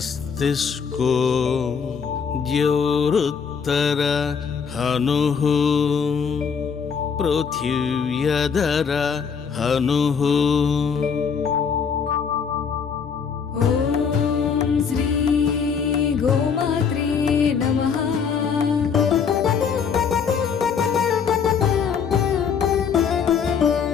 द्योरुत्तर हनुः पृथिव्यधर हनुः. ఓం శ్రీ గోమాత్రే నమః.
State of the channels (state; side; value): quieter; right; 6.5 dB